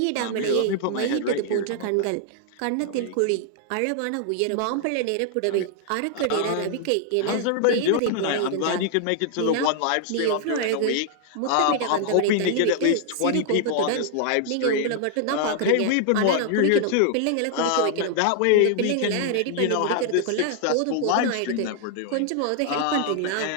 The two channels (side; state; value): both; different; correlation 0.00